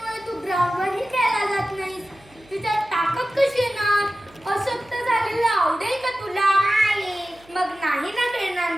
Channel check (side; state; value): right; noise; hum, 27 dB below the sound